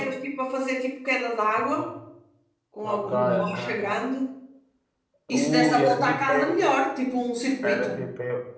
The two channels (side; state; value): both; identical; correlation 1.00